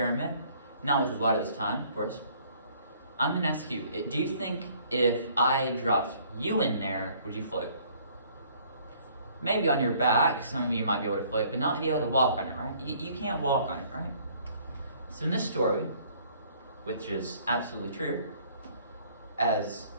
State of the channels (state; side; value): inverted; both; correlation -0.59